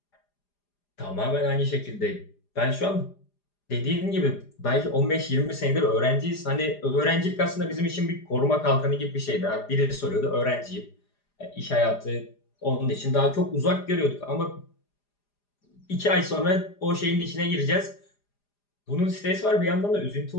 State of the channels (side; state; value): right; late; 4.9 ms